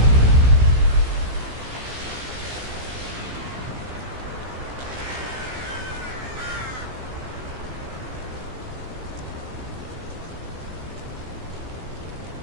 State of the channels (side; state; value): left; late; 16 ms